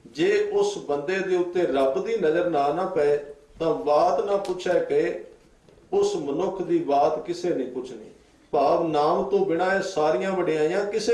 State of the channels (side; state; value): both; identical; correlation 1.00